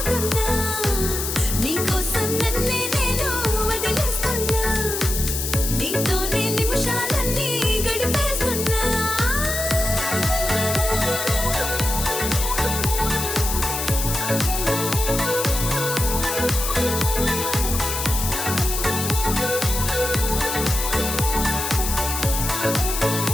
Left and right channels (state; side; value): noise; left; hiss, 3 dB below the sound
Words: నీకోసం నన్నే నేను వదిలేస్తున్నా, నీతోనే నిమిషాలన్నీ గడిపేస్తున్నా.